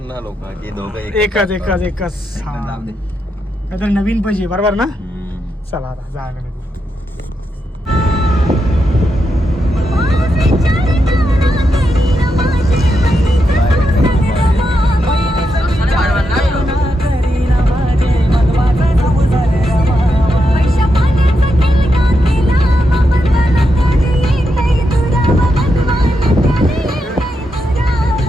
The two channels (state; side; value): normal; both; correlation 0.84